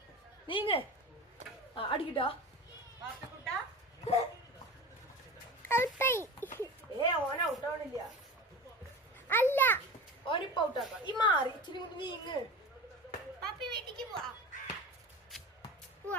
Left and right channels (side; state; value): both; normal; correlation 0.31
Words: ആ അടിക്കട്ടോ. ഓന ഔട്ടാവണില്ല. അല്ല ഓനിപ്പ ഔട്ടാക്കാം. ഈ മാറി ഇച്ചിരി കൊണ്ട് നീങ്ങ്. വീട്ടിക്ക് പോവാ.